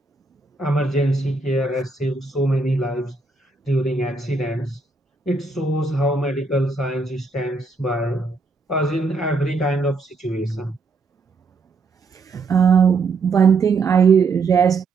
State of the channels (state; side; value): quieter; left; 4.0 dB